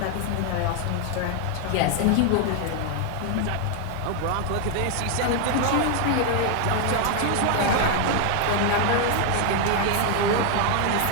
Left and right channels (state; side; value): different; both; correlation 0.00